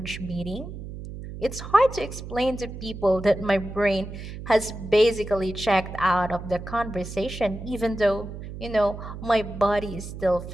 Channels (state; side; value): noise; right; hum, 10 dB below the sound